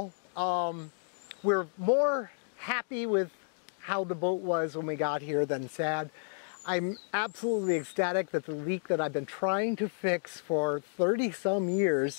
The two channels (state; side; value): silent; right; digital silence